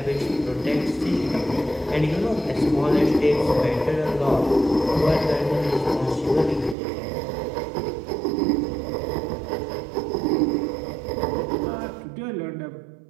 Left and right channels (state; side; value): drops out; left; at 6.8 s